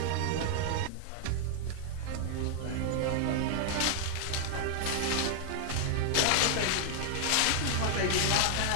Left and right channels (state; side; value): different; both; correlation 0.00